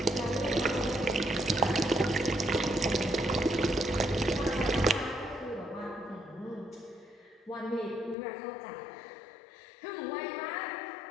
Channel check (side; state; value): right; drops out; at 8.2 s